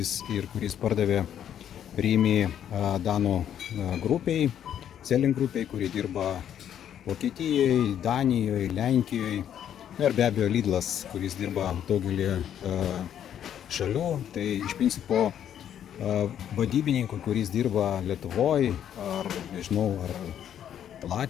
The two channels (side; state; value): right; quieter; 9.9 dB